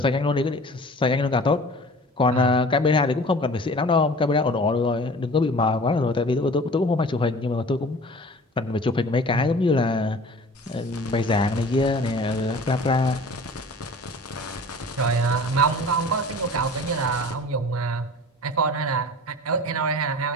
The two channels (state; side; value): normal; both; correlation 0.43